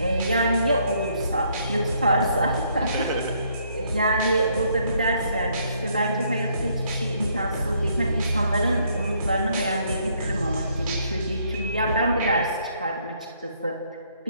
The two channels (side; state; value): both; inverted; correlation -0.69